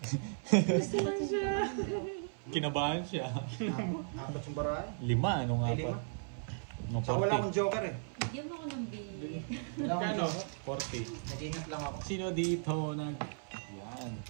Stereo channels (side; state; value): left; silent; 54 dB below the other